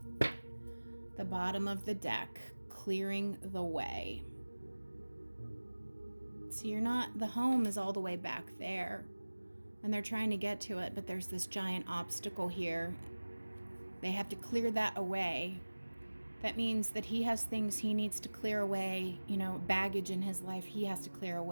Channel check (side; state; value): both; inverted; correlation -1.00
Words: The bottom of the deck, clearing the way. So the home is all the way back there, and they're trying to get to it, but there's this giant obstacle here. They have to clear that away. That means that he has things he needs to clear away, baggage in his life he has to clear